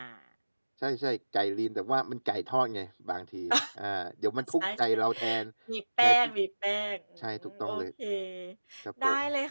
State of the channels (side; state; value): both; inverted; correlation -1.00